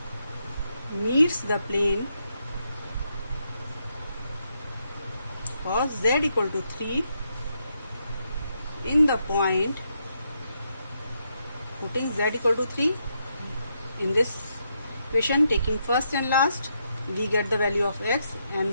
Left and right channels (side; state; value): both; inverted; correlation -0.80